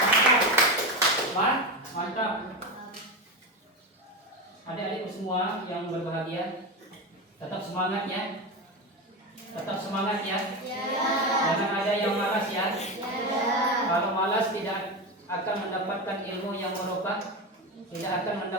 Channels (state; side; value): normal; both; correlation 0.17